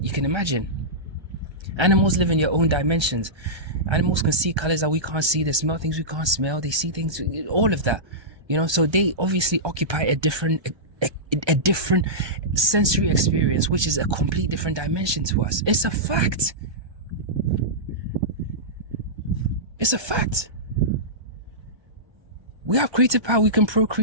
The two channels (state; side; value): late; left; 1.3 ms